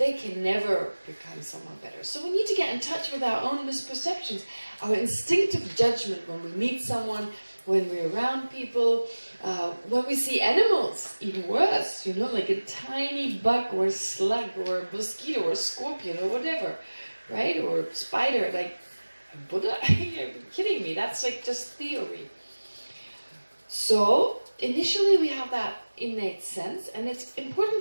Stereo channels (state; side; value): inverted; both; correlation -1.00